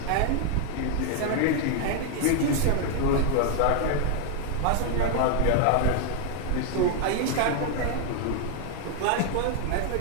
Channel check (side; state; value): both; different; correlation 0.00